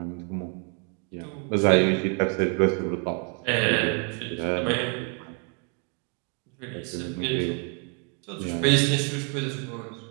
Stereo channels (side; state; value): left; quieter; 38.5 dB